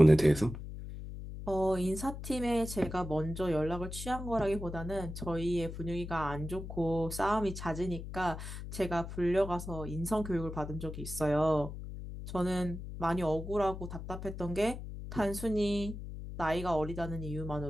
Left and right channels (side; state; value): left; noise; hum, 9 dB below the sound